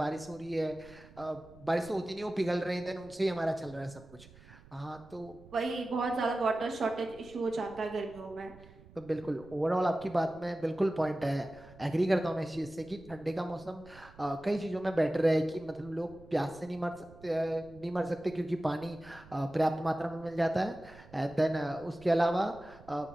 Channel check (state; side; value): noise; right; rumble, 22 dB below the sound